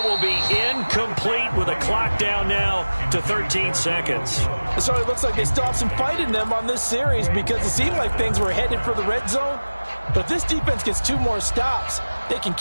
will be incomplete with a clock down now to 13 seconds. So it looks like they still have some fight in them on this series because it seemed like things were headed for the red zone. But if this defense gets 2 more stops, they can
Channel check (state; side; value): inverted; both; correlation -1.00